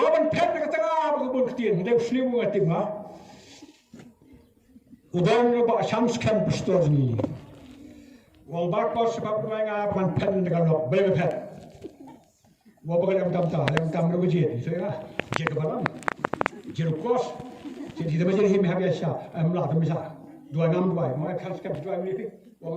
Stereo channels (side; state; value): both; identical; correlation 1.00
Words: pet dekat tengah berkebun ketin. Dia selimu ngatim ha. Udan ba shams kan pastor ni. Wang bak bos sebab mereka ban pen dekat lok bebe pet. Waban yang tam berjit. So ya. Jek balang. Jek kos. Jadi dia menjadi him habisah. Amlah tu misal. 262. Mereka kan dua ni.